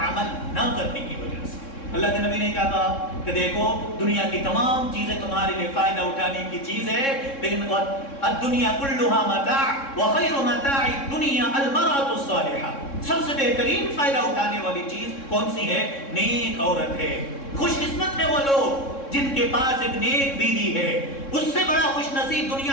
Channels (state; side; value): late; right; 3.6 ms